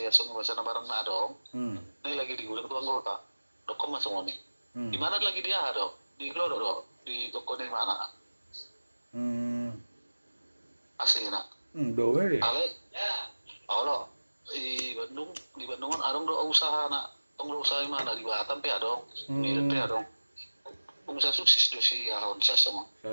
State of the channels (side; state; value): both; inverted; correlation -1.00